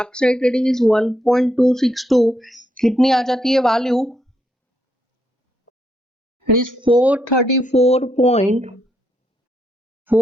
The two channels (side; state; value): both; normal; correlation 0.77